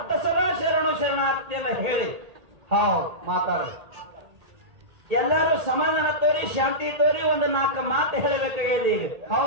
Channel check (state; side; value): late; left; 1.8 ms